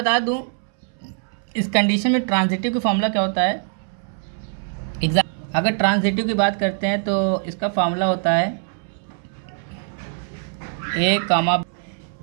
दूं, इस कंडीशन में ट्रांजिटिव की फॉर्मूला क्या होता है। अगर ट्रांजिटिव की बात करते हैं तो इसका फॉर्मूला होता है ए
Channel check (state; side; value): silent; left; 64 dB below the other